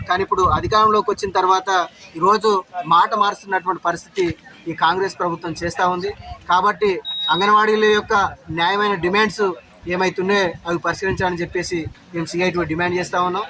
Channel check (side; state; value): both; identical; correlation 1.00